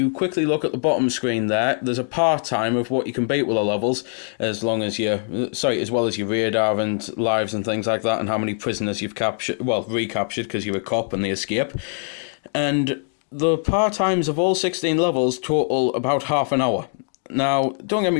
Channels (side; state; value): right; silent; 56 dB below the other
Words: quickly look at the bottom screen there's a part-time of what you can beat with the levels, as well as your radar and lives and things like that, and how many prisoners you've captured, well, recaptured because you're a cop and they escape. And the part-times of all 16 levels total about half an hour. Now, don't get